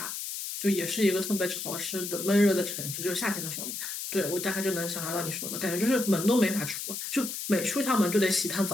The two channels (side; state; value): left; noise; hiss, 6 dB below the sound